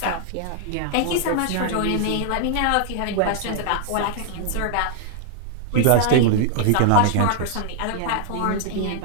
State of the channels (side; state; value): both; different; correlation 0.00